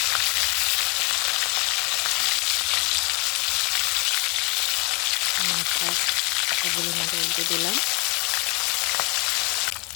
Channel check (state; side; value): quieter; right; 27.7 dB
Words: মাছটা সবগুলো মাছ উল্টে দিলাম।